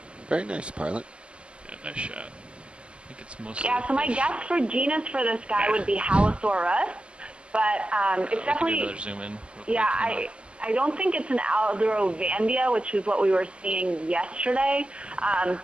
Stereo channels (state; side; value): late; left; 0.053 ms